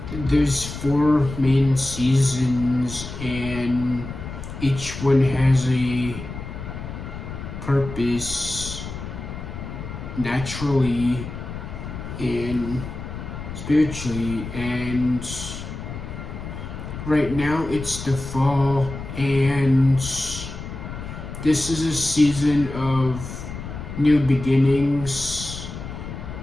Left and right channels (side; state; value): left; noise; rumble, 9 dB below the sound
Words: there's 4 main seasons, and each one has a purpose naturally and spiritually. And right now it's the fall, and this is a season of new beginnings.